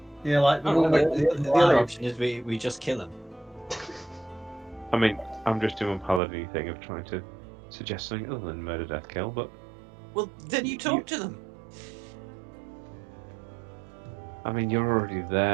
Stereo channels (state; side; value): drops out; left; at 6.2 s